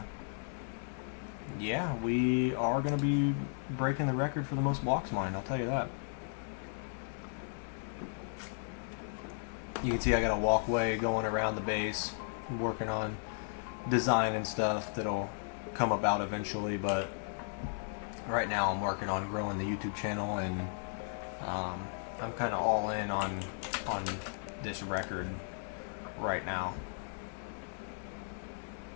yeah, we are going to be breaking the record for the most blocks mined, I'll tell you that. You can see I got a walkway going around the base. I'm working on design and stuff that'll come about eventually, but right now I'm working on growing the YouTube channel, and I'm kind of all in on this record right now.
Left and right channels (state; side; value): silent; right; 54 dB below the other